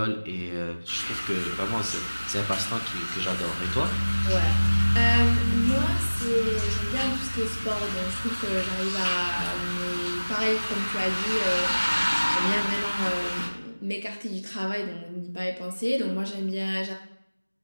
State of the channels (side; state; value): both; inverted; correlation -1.00